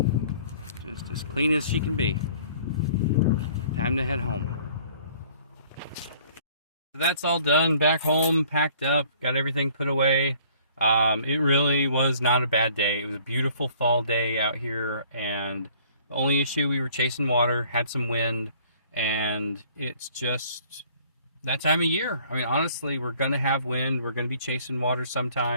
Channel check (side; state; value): both; inverted; correlation -0.56